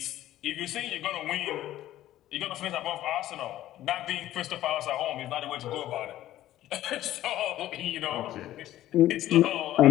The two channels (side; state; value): right; quieter; 13.8 dB